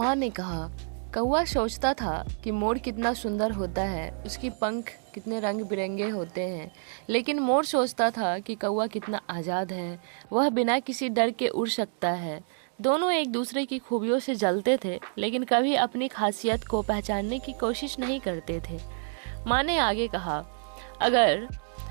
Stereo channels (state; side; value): silent; left; 59 dB below the other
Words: ने कहा, कौवा सोचता था कि मोर कितना सुंदर होता है, उसकी पंख कितने रंग बिरंगे होते हैं, लेकिन मोर सोचता था कि कौवा कितना आज़ाद है, वह बिना किसी डर के उड़ सकता है। दोनों एक दूसरे की खूबियों से जलते थे, लेकिन कभी अपनी खासियत को पहचानने की कोशिश नहीं करते थे। माँ ने आगे कहा, अगर